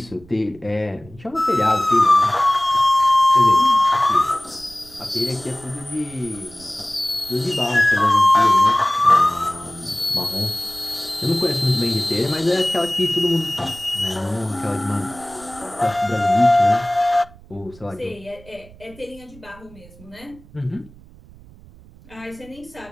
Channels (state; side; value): noise; right; rumble, 23 dB below the sound